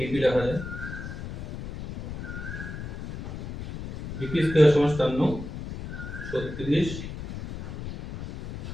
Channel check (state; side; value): noise; left; rumble, 8 dB below the sound